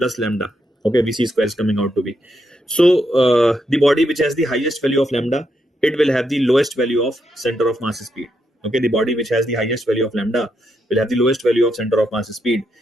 lambda. Okay, vc square is coming out to be. So the body which has the highest value of lambda, it will have the lowest value of center of mass speed. Okay, the body which has the highest value of lambda will have the lowest value of center of mass speed.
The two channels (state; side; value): normal; both; correlation 0.81